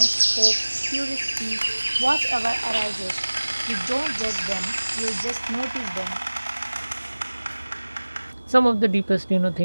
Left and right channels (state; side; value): inverted; both; correlation -1.00